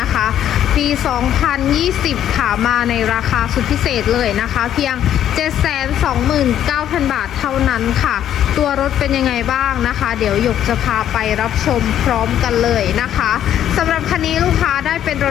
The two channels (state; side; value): quieter; right; 10.7 dB